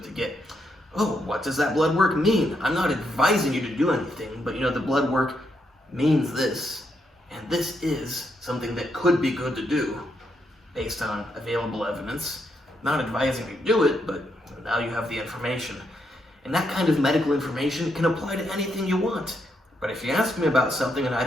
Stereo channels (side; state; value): both; normal; correlation 0.79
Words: to get. Oh, what does that blood work mean? I'm not advising you to do anything, but the blood work means this, and this is something that could be good to do based on available evidence. Not advising you to do it, but now you have the information. And that kind of medical information can apply to anything you want. But if you ask me about something and I